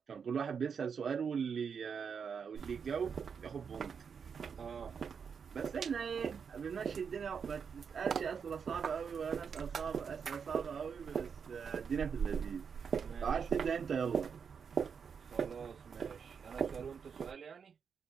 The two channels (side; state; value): left; quieter; 6.5 dB